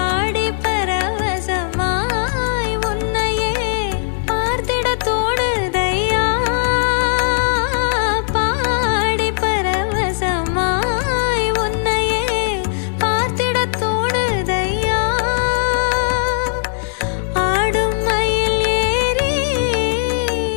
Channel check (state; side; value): silent; right; digital silence